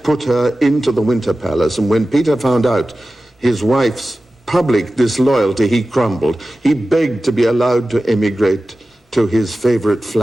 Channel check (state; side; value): normal; both; correlation 0.95